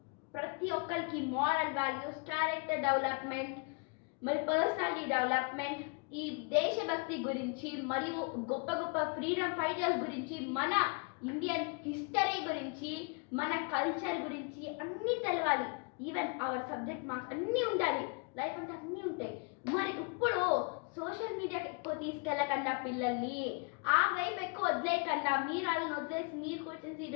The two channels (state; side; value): quieter; right; 34.2 dB